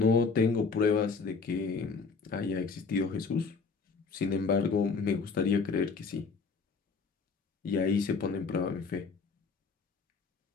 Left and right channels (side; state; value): right; quieter; 4.8 dB